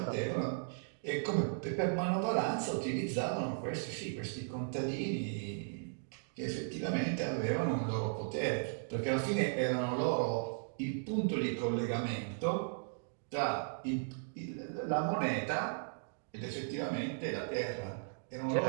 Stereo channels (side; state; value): left; silent; digital silence